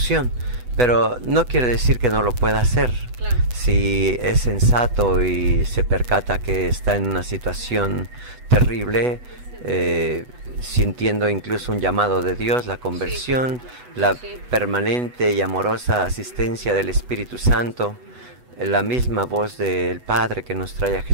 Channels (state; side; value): late; left; 8.1 ms